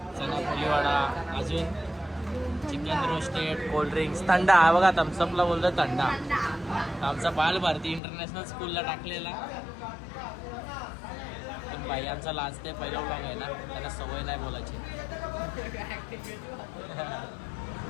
चना पोलीवाडा, अजून चिकन रोस्टेड, कोल्ड्रिंक्स, थंडा. हा बघा थम्सअपला बोलतो थंडा. आमचा बाल भारती इंटरनॅशनल स्कूलला टाकलेला, पण बाई आमचा लाजते. पहिला व्लॉग आहे ना, त्यांना सवय नाही बोलायची.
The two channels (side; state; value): right; drops out; at 8.0 s